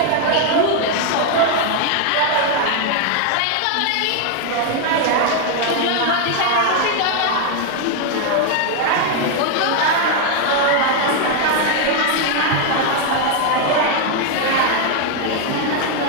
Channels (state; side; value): different; both; correlation 0.00